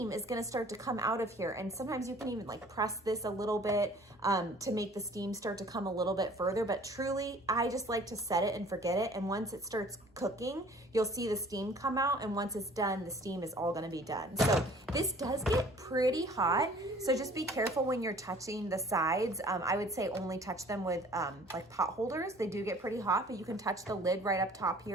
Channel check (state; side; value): normal; both; correlation 0.52